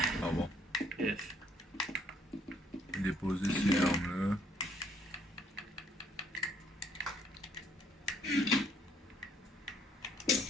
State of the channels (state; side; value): normal; both; correlation 0.66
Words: Ah bon. Yes. Déposer ces armes-là.